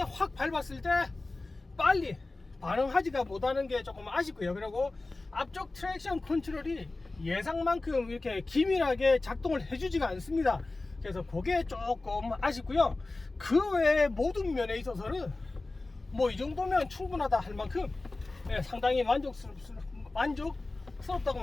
확 밟았을 때 빨리 반응하지가 못하는 게 조금 아쉽고요. 그리고 앞쪽 트랙션 컨트롤이 예상만큼 이렇게 기밀하게 작동을 해주지가 않습니다. 그래서 그게 조금 아쉽고요. 그 외에 모든 면에 있어서는 뭐 이 정도면 충분하다 할 만큼 상당히 만족스럽다고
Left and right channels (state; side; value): quieter; right; 3.2 dB